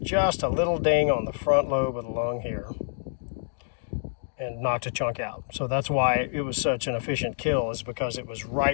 just a little ding on the front lobe of the lung here and knocked a chunk out. So that's why it was such an efficient kill, is because it was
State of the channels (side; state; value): right; silent; digital silence